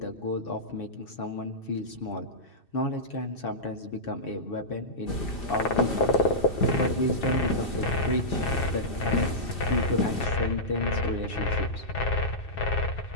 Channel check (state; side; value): late; right; 2.6 ms